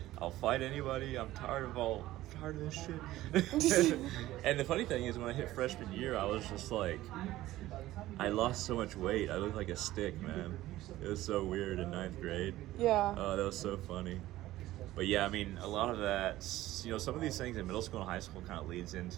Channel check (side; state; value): left; quieter; 15.8 dB